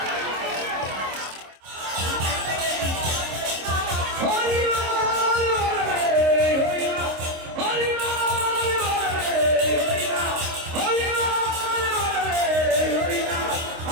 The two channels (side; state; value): left; late; 26 ms